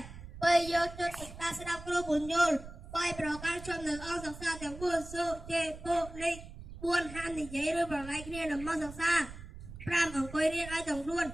2យកចិត្តសិក្សាស្ដាប់គ្រូបញ្យល់3ប្រកាន់ជាប់នៅអង្គសិក្សាទាំង4សុជេពុលេខ4ហាមនិយាយឬប្រឡែកគ្នានៅមកសិក្សា5អង្គុយរៀនឲ្យទាំងខ្លួន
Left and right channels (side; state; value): right; noise; rumble, 13 dB below the sound